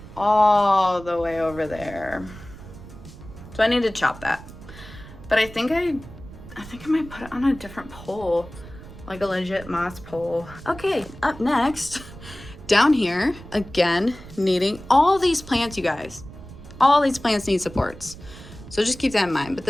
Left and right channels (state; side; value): noise; right; rumble, 16 dB below the sound